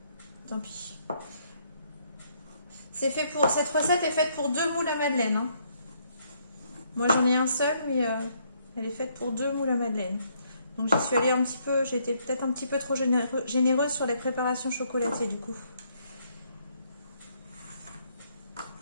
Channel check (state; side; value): inverted; both; correlation -0.70